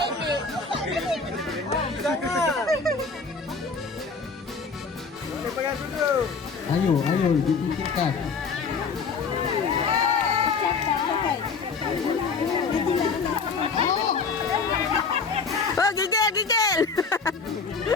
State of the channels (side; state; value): right; quieter; 4.9 dB